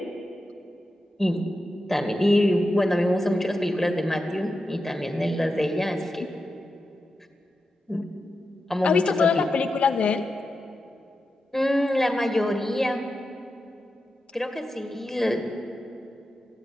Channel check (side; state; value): both; normal; correlation 0.89